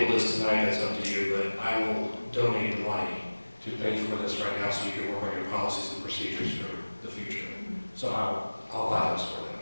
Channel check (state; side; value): inverted; both; correlation -1.00